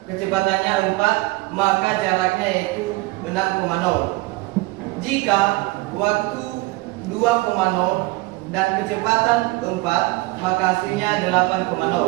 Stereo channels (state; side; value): quieter; left; 22.7 dB